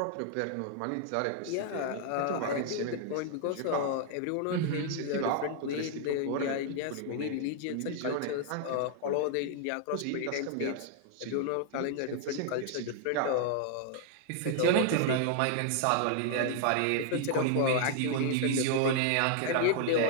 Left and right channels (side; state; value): both; different; correlation 0.00